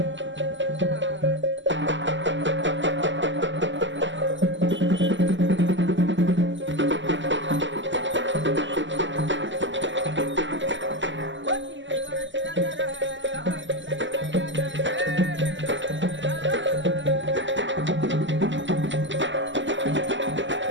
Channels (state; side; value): late; left; 0.54 ms